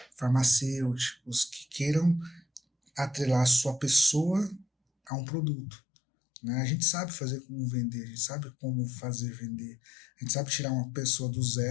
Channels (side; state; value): right; drops out; at 5.1 s